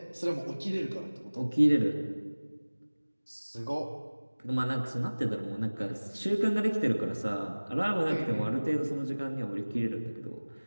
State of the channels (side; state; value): both; inverted; correlation -1.00